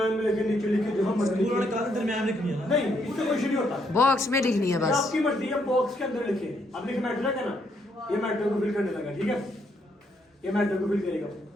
में लिखे, नीचे लिखे, जो हम मर्जी उन्होंने कहा दरमियान में लिखनी है ना? नहीं, उससे कुछ नहीं होता, बॉक्स में लिखनी है बस। आपकी मर्जी है, बॉक्स के अंदर लिखे। अब लिखे मैट्रिक है ना, ये मैट्रिक को फिल करने लगा। ठीक है, ये मैट्रिक को फिल करेगा।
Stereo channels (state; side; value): normal; both; correlation 0.74